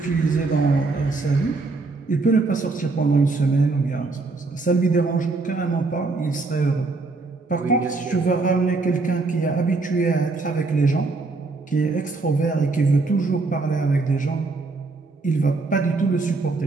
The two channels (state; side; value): quieter; left; 3.6 dB